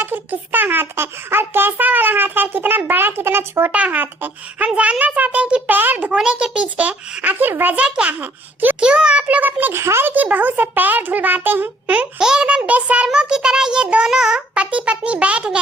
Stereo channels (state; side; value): normal; both; correlation 0.62